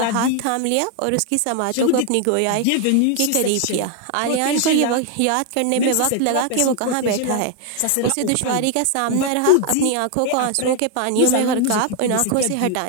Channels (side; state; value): both; different; correlation 0.00